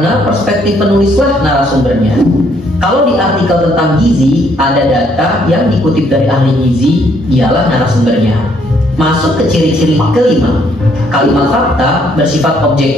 perspektif penulislah narasumbernya. Kalau di artikel tentang gizi, ada data yang dikutip dari ahli gizi, dialah narasumbernya. Masuk ke ciri-ciri kelima. Kalimat fakta bersifat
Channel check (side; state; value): both; normal; correlation 0.68